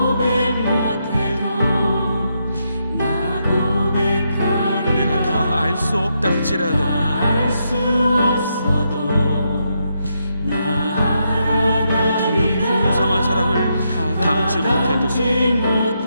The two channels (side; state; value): both; inverted; correlation -0.81